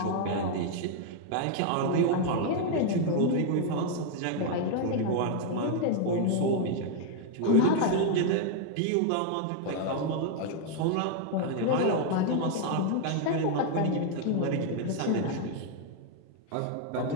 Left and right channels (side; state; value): both; different; correlation 0.00